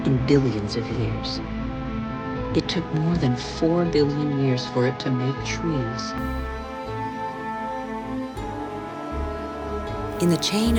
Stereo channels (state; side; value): identical; both; correlation 1.00